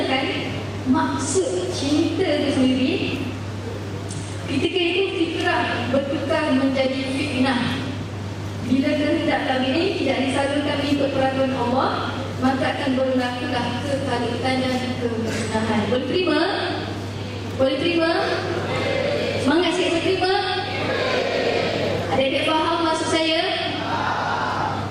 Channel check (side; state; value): both; identical; correlation 1.00